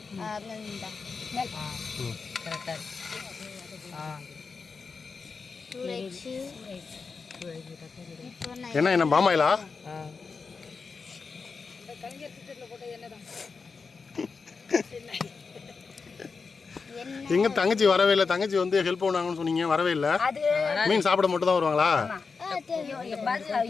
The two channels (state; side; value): quieter; right; 4.9 dB